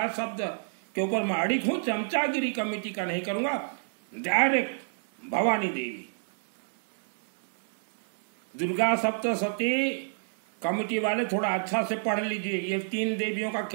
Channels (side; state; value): left; silent; digital silence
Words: शब्द के ऊपर मैं अड़िग हूं, चमचागिरी कमेटी का नहीं करूंगा, डायरेक्ट भवानी देवी। दुर्गा सप्तशती कमेटी वाले थोड़ा अच्छा से पढ़ लीजिए, ये 3 देवियों का